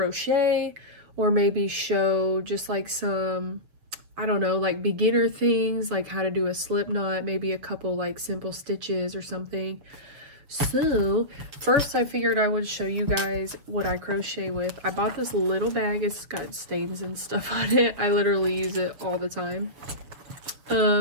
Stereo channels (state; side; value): late; left; 7.0 ms